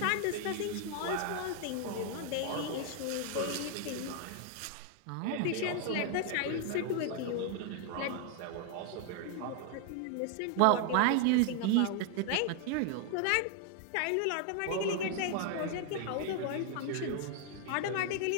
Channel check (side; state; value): both; different; correlation 0.00